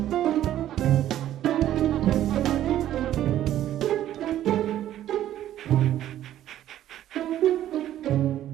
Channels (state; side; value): quieter; left; 12.3 dB